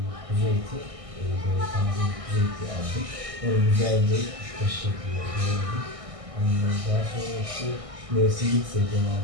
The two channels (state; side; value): late; left; 1.6 ms